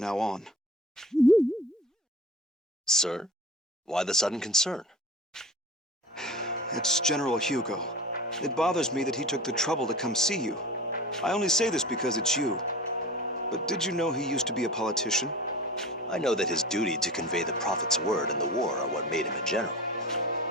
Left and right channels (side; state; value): both; normal; correlation 0.36